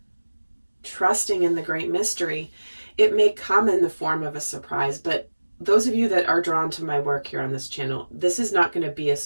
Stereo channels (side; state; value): both; inverted; correlation -1.00